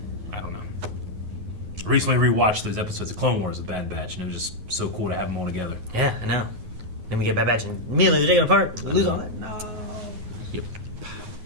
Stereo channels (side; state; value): left; late; 9.5 ms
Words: I don't know. I recently rewatched those episodes of Clone Wars, The Bad Batch, and it was just so cool to have them all together. Yeah, I know. Then we get Bad Batch and immediately they're taken apart. We lose all that. No. Yep.